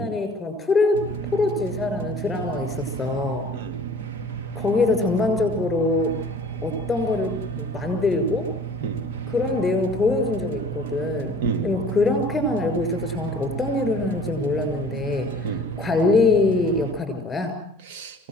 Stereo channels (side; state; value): both; normal; correlation 0.49